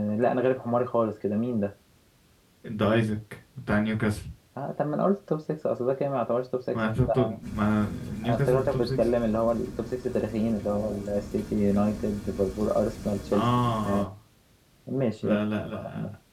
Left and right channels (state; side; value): identical; both; correlation 1.00